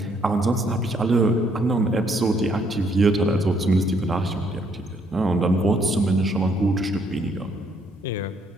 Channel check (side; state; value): both; normal; correlation 0.69